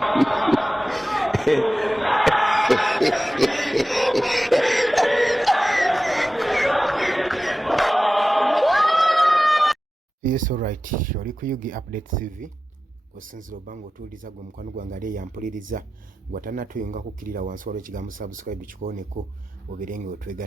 all right. Oli ku Yugi Update TV. Osinzira obango otuuliza gwe mukwano gwange ali yampuliriza gwatanatuyunga kukkirira wansi waliwo ekigambo subscribe kikooneko oberenge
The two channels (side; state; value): both; normal; correlation 0.94